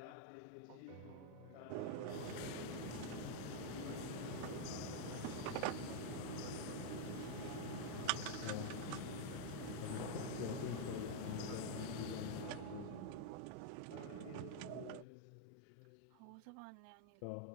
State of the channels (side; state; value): both; different; correlation 0.00